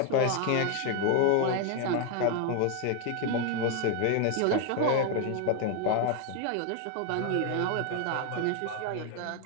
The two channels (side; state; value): both; different; correlation 0.01